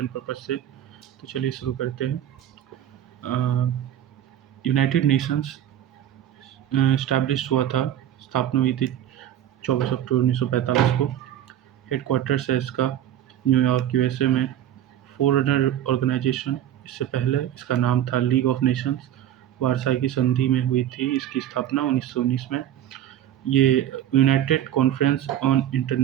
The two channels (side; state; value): left; quieter; 11.4 dB